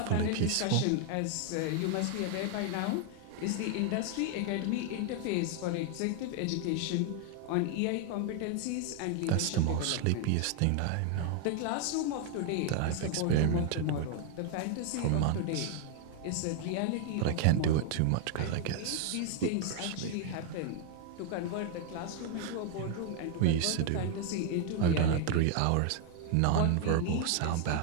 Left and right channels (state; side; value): different; both; correlation 0.00